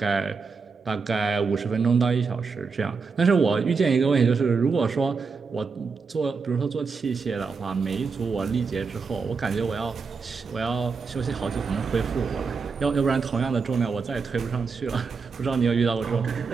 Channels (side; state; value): left; quieter; 5.0 dB